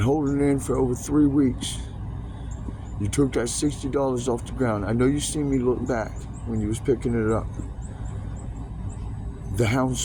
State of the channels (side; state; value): both; identical; correlation 1.00